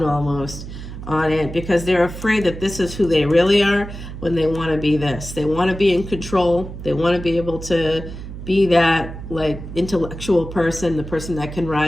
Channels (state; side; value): noise; right; hum, 10 dB below the sound